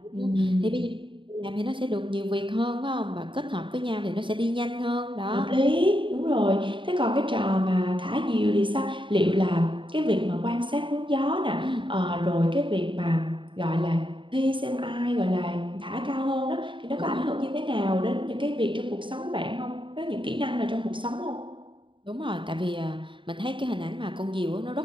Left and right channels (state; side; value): late; left; 0.24 ms